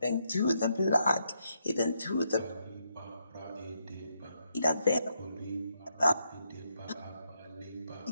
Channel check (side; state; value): both; inverted; correlation -0.79